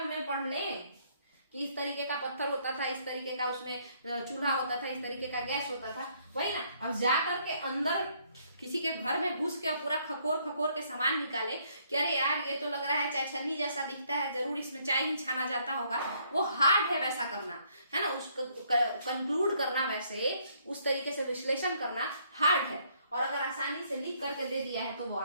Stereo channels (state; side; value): inverted; both; correlation -0.68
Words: में पढ़ लें कि इस तरीके का पत्थर होता था, इस तरीके का उसमें चूल्हा होता था, इस तरीके का गैस होता था, वही ना। अब जाकर के अंदर किसी के घर में घुस के पूरा खकोर के सामान निकाले कि अरे यार ये तो लग रहा है चाय छन्नी जैसा दिखता है, जरूर इसमें चाय ही छाना जाता होगा, वो हार्ड है वैसा करना, है ना। उसको कंक्लूड करना, वैसे उस तरीके से विश्लेषण करना हार्ड है, और अगर आसानी से लिख करके दे दिया है तो वो